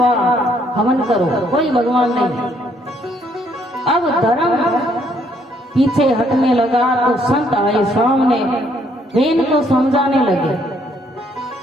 हवन करो, कोई भगवान नहीं। अब धर्म पीछे हटने लगा तो संत आए सामने, वेन को समझाने लगे।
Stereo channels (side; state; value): both; normal; correlation 0.68